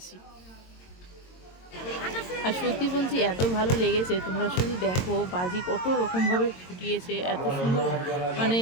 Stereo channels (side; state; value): right; late; 22 ms